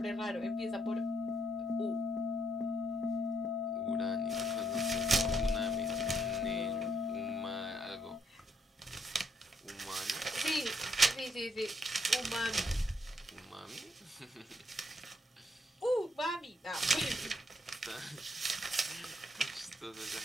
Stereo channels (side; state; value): both; normal; correlation 0.73